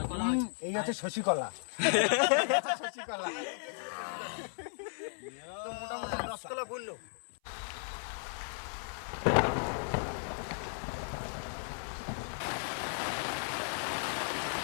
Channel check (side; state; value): right; silent; 54 dB below the other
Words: এই হচ্ছে শশী কলা। শশীকলা মোটামুটি রসকলা বললো।